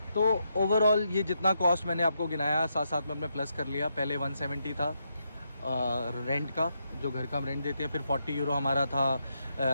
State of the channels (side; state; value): both; inverted; correlation -0.81